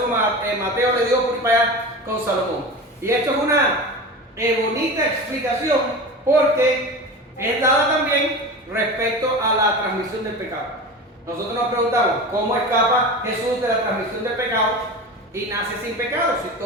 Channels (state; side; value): normal; both; correlation 0.30